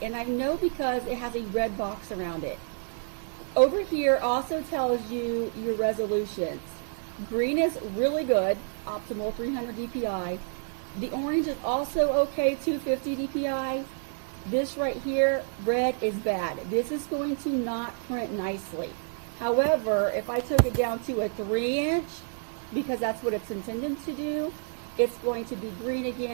and I know because it has a red box around it. Over here also tells you your resolutions. Green is really good, optimal 300 DPI. The orange is also okay, 250 DPI. This right here, red, is bad. This is going to not print nicely. However, if I took it down to a 3-inch, because that's what it's intended to do, it's going to be green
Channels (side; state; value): left; silent; 59 dB below the other